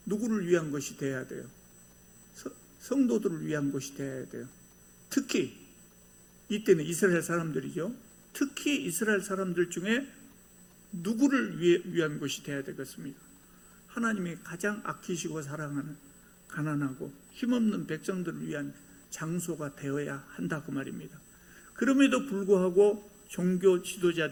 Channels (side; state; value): both; identical; correlation 1.00